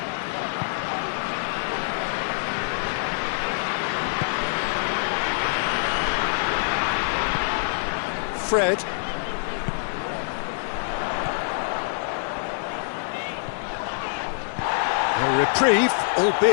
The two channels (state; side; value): silent; right; 62 dB below the other